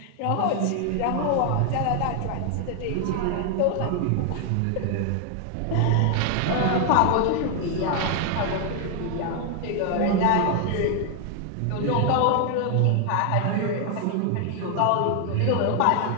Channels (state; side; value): different; both; correlation 0.00